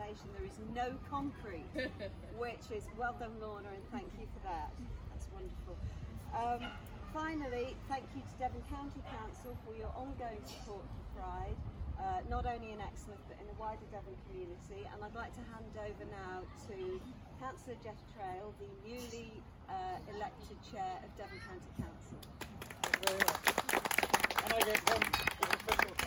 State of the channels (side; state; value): both; identical; correlation 1.00